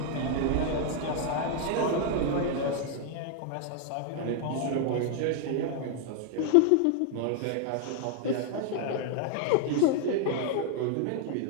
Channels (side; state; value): both; different; correlation 0.00